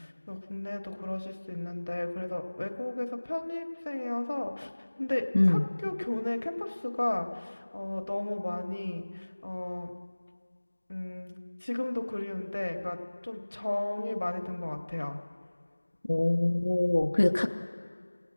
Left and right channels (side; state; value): both; inverted; correlation -1.00